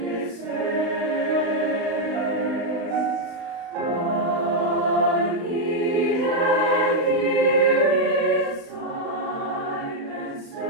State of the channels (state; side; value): late; left; 35 ms